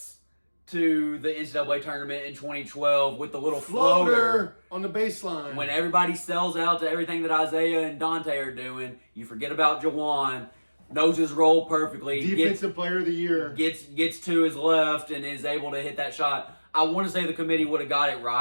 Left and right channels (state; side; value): inverted; both; correlation -1.00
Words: to the NCAA tournament in 2012 with the little floater on the baseline. When everybody sells out to everything that Isaiah and Dante are doing, you forget about Jawan. Knows his role perfectly. Defensive player of the year. Gets to his left and is able to hit that shot. I want to say the committee would have got it